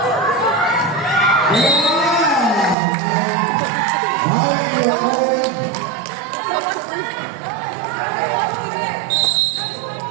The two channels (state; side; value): drops out; left; at 2.8 s